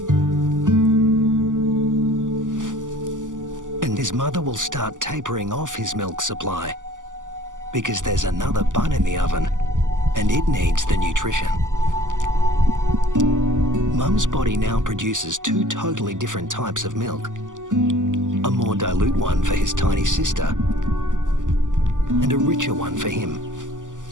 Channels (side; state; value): left; late; 0.87 ms